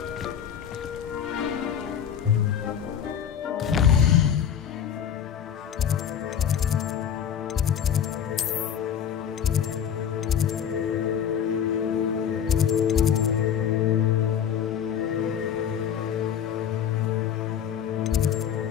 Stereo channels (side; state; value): right; quieter; 8.6 dB